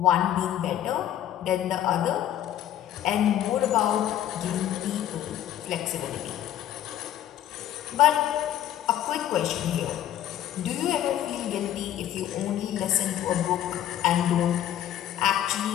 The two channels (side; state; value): right; quieter; 11.6 dB